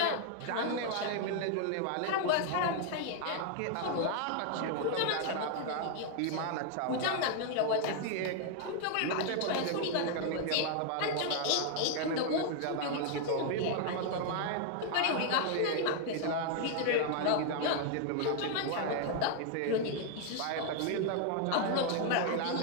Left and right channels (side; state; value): both; different; correlation 0.00